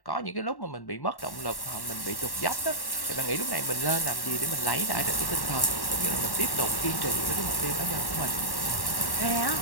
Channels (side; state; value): right; late; 1.1 ms